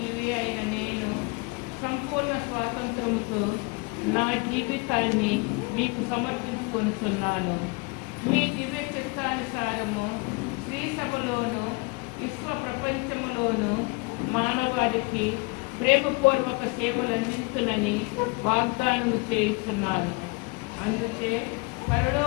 అయిన నేను సంపూర్ణ స్వాతంత్రముతో నా జీవితాన్ని మీకు సమర్పించుకుంటున్నాను. మీ దివ్య చిత్తానుసారము శ్రీ సభలోను విశ్వ ప్రపంచములోను మానవాళికి ప్రేమపూర్వక సేవలు అందిస్తునని వాగ్దానము చేస్తున్నాను. అందుకే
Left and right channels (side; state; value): right; quieter; 28.5 dB